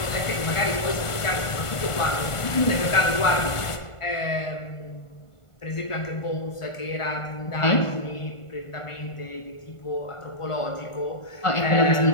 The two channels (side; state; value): right; late; 1.5 ms